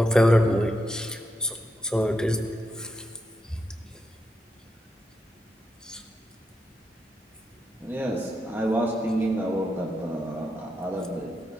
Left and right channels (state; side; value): normal; both; correlation 0.84